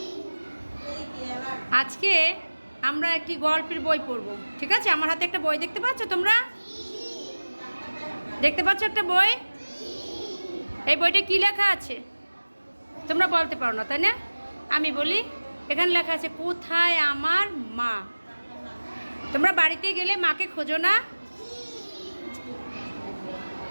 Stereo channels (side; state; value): both; inverted; correlation -1.00